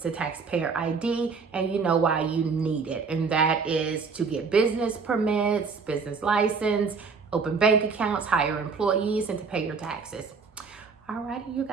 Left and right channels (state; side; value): quieter; left; 5.1 dB